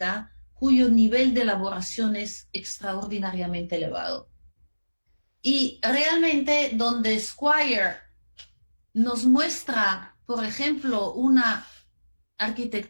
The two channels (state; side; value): inverted; both; correlation -1.00